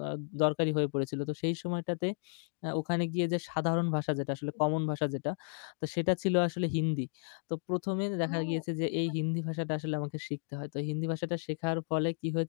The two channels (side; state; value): right; silent; 56 dB below the other